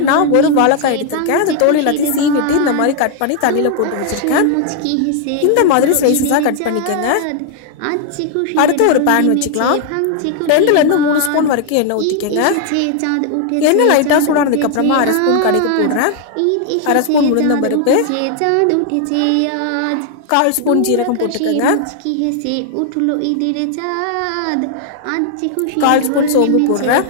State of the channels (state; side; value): different; both; correlation 0.00